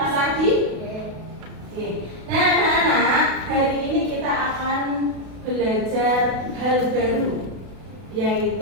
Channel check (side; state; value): left; late; 32 ms